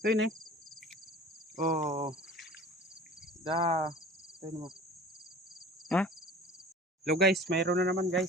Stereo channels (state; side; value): normal; both; correlation 0.42